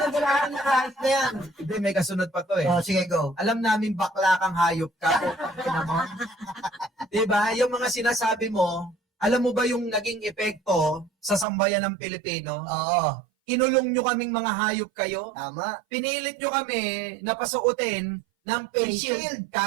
galamin na kahit na yan. Hindi, may kasunod pa to eh. Oh, sige, go. Alam namin bakla kang hayop ka. Diba? Yung mga sinasabi mo, alam mo ba yung naging epekto sa sambayan ng Pilipino? Oo. Kinulong nyo kaming mga hayop kayo. Tama. Pinilit nyo kami na pasuotin ng face shield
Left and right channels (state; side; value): drops out; left; at 11.5 s